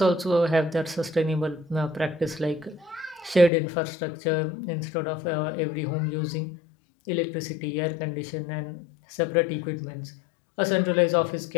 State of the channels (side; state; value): right; drops out; at 3.5 s